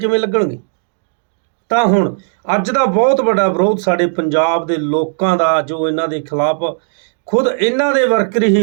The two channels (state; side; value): silent; left; digital silence